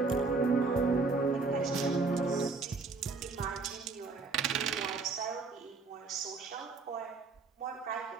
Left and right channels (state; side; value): quieter; left; 4.1 dB